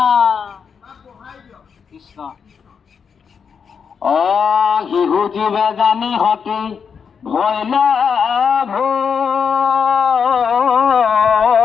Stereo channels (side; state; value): right; quieter; 6.4 dB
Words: কৃষ্ণ। শিশু জীৱে জানি হতি ভয়